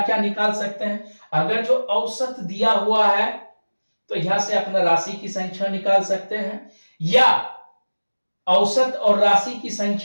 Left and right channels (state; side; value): inverted; both; correlation -1.00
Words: क्या निकाल सकते हैं? अगर जो औसत दिया हुआ है तो यहां से अपना राशि की संख्या निकाल सकते हैं, या औसत और राशि की